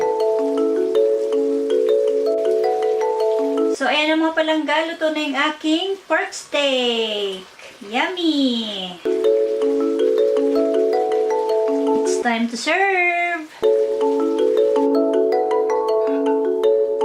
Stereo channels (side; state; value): both; identical; correlation 1.00